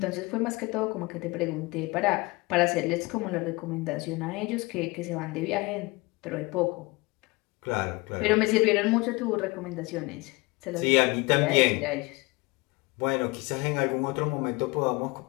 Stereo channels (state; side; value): quieter; right; 24.6 dB